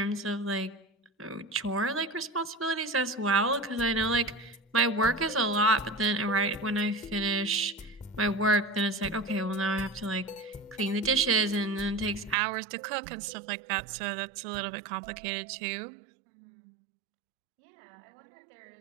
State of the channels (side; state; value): left; drops out; at 12.4 s